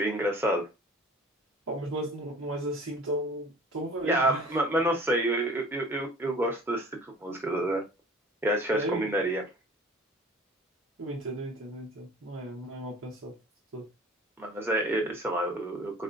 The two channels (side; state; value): both; normal; correlation 0.46